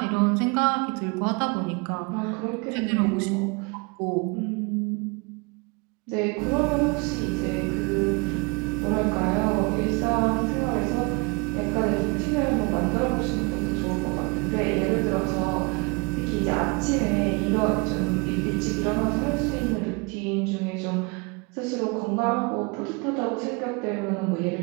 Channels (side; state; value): left; quieter; 29.5 dB